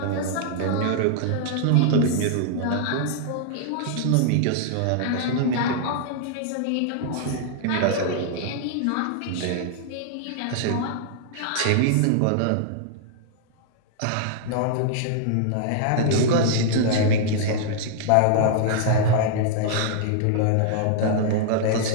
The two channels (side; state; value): both; different; correlation -0.01